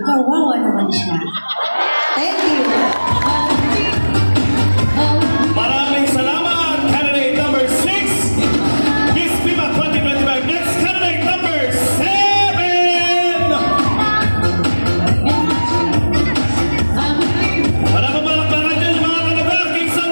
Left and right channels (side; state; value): both; inverted; correlation -1.00